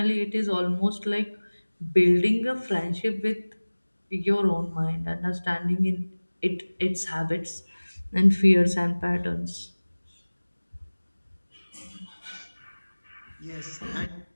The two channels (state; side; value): inverted; both; correlation -1.00